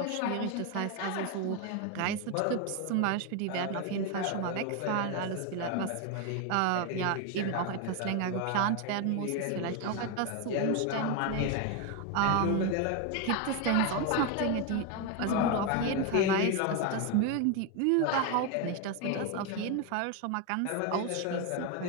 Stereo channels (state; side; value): different; both; correlation 0.02